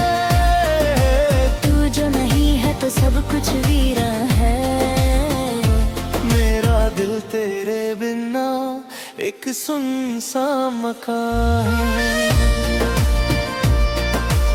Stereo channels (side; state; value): both; identical; correlation 1.00